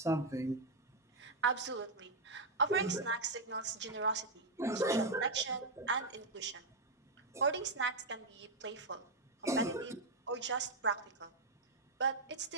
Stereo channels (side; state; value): left; quieter; 3.2 dB